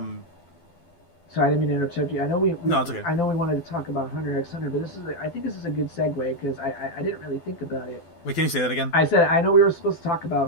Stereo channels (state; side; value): late; right; 12 ms